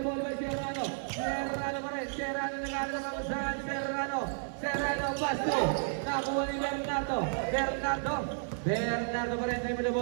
ball by Serrano pa rin, Serrano nag-aaral ng kamusahan, Serrano, Basto, nakuha ni Bernardo pa rin, dribble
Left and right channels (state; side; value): silent; left; digital silence